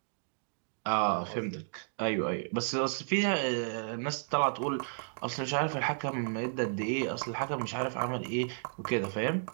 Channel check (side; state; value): left; silent; digital silence